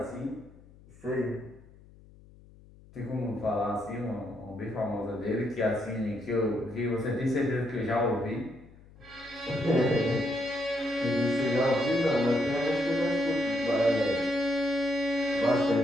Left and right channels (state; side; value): noise; left; hum, 24 dB below the sound